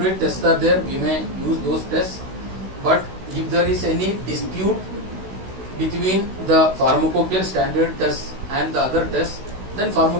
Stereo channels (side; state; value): left; late; 16 ms